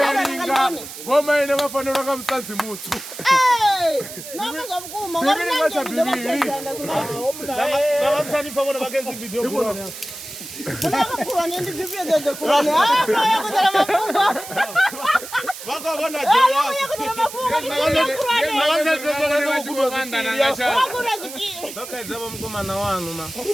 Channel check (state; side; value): noise; right; hiss, 12 dB below the sound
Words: vomaine vafanira kamusadzi mutsu nomazamukuma vavasanifa vakenzi video unakurani ndizivyezeze kurani yakuzala mafungo vakavona vakaedzava mukomana wanu ma